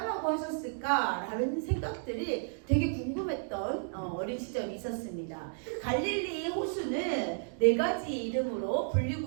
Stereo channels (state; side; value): silent; left; digital silence